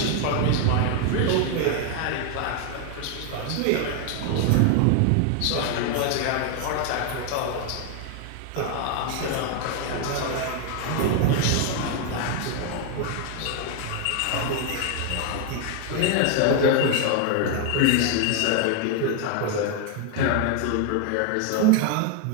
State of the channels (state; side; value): different; both; correlation 0.01